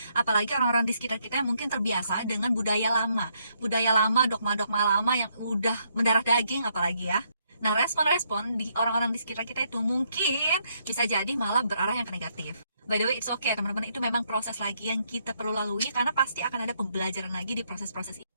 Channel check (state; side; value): inverted; both; correlation -0.73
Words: Apalagi orang-orang di sekitar kita yang mungkin terbiasa dengan budaya lama, dogma-dogma lama yang udah mendarah daging apalagi ya. Nah, respon-respon di orang-orang di sekitar kita itu mungkin bisa jadi malah berarah yang ke negatif. By the way, it's okay teman-teman, itu memang proses lagi yang kita perlu lalui, karena pasti akan ada pembelajaran lagi di proses-proses ini.